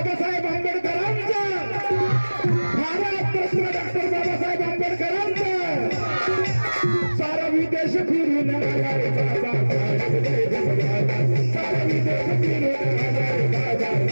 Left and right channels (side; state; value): both; inverted; correlation -1.00